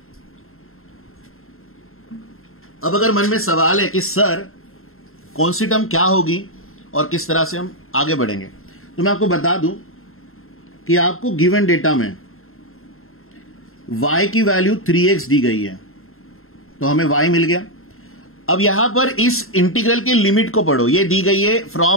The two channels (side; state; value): right; late; 0.61 ms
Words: अब अगर मन में सवाल है कि सर कौन सी टर्म क्या होगी और किस तरह से हम आगे बढ़ेंगे, तो मैं आपको बता दूं कि आपको गिवन डेटा में y की वैल्यू 3x दी गई है, तो हमें y मिल गया। अब यहां पर इस इंटीग्रल के लिमिट को पढ़ो, ये दी गई है